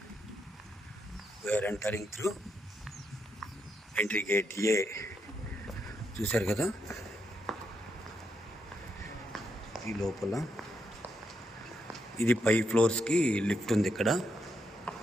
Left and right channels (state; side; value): normal; both; correlation 0.80